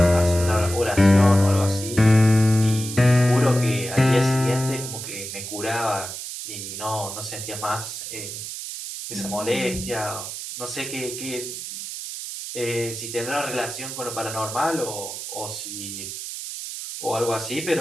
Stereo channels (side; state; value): right; noise; hiss, 8 dB below the sound